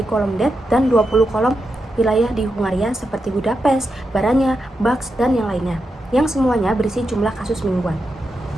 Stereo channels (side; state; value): both; normal; correlation 0.87